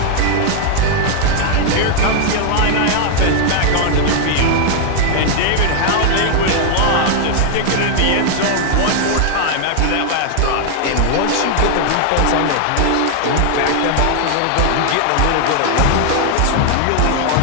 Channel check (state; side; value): different; both; correlation 0.00